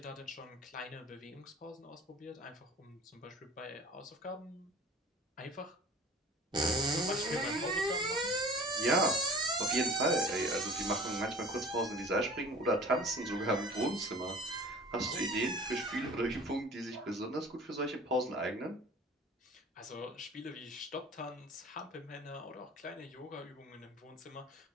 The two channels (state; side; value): normal; both; correlation 0.43